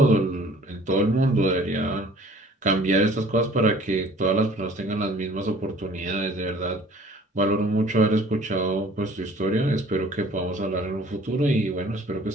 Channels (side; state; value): both; normal; correlation 0.52